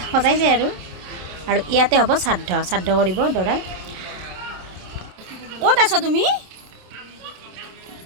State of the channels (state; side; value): late; left; 27 ms